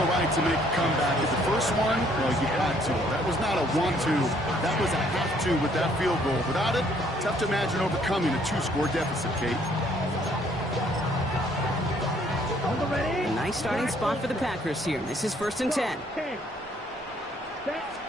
right to make a comeback. At the first one, well, you had to. That was not a want-to. That was a have-to with that field goal. Without it, tough to imagine overcoming a 2-score deficit, Kate. A nice starting spot for the Packers here. This is 1st and 10.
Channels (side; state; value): both; normal; correlation 0.64